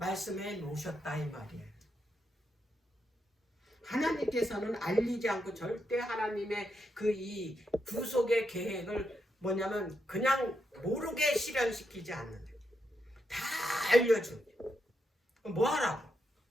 놓으셨다 이 말이에요. 하나님께서는 알리지 않고 절대 하나님의 이 구속의 계획을 뭐냐면 그냥 모르게 실현시키지 않는데 다 알려줍니다. 뭐 하라고?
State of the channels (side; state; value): both; normal; correlation 0.82